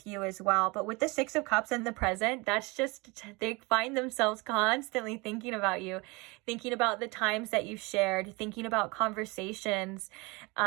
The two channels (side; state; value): left; quieter; 26.1 dB